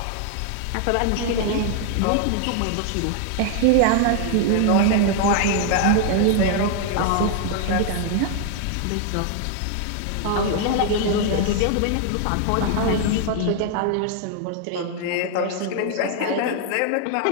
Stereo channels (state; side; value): different; both; correlation 0.00